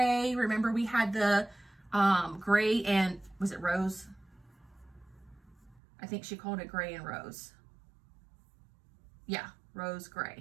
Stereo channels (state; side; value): drops out; left; at 5.8 s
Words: Remember we had the gray and, was it rose? I think she called it gray and rose. Yeah, rose